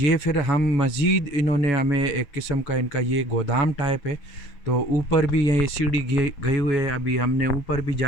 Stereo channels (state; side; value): late; right; 7.2 ms